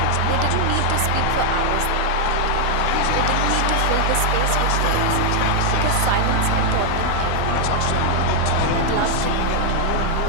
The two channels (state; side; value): different; both; correlation 0.00